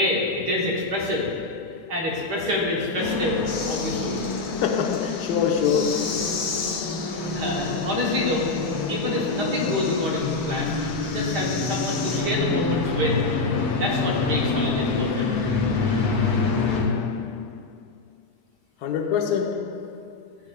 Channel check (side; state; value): right; quieter; 3.5 dB